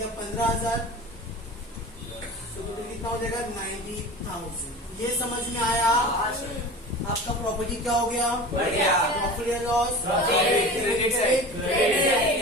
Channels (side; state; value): both; normal; correlation 0.34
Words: 15,000, तो कितना हो जाएगा 90,000, ये समझ में आया। आपका प्रॉपर्टी क्या हो गया, प्रॉफिट या लॉस,